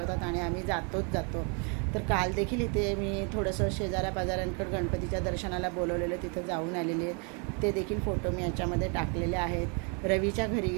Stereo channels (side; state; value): left; quieter; 36.1 dB